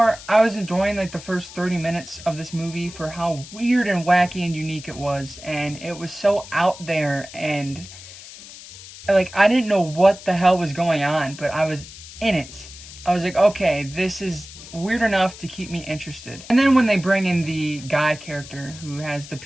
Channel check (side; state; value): left; noise; hiss, 16 dB below the sound